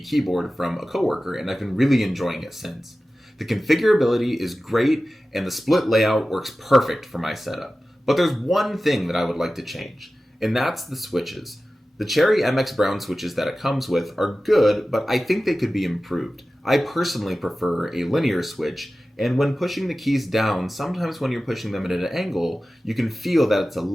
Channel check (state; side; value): normal; both; correlation 0.95